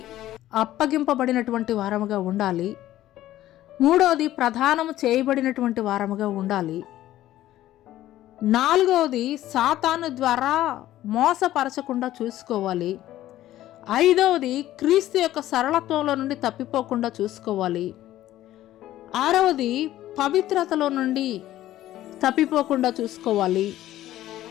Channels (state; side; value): quieter; right; 14.0 dB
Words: అప్పగింపబడినటువంటి వారముగా ఉండాలి. 3వది, ప్రధానము చేయబడినటువంటి వారముగా ఉండాలి. 4వది, సాతాను ద్వారా మోసపరచకుండా చూసుకోవాలి. 5వది, క్రీస్తు యొక్క సరళత్వంలో నుండి తప్పిపోకుండా చూసుకోవాలి. 6వది, పవిత్రతలో నుండి తప్పిపోకుండా చూసుకోవాలి.